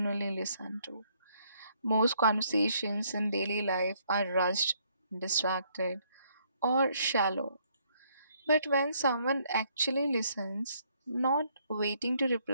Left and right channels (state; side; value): inverted; both; correlation -0.69